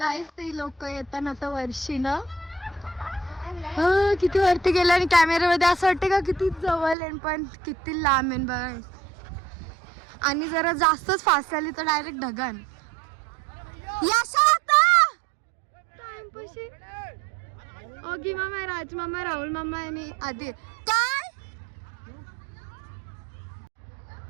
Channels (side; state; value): left; drops out; at 7.0 s